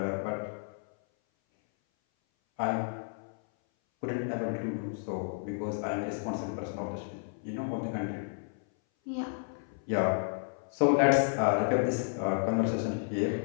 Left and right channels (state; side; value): silent; right; 57 dB below the other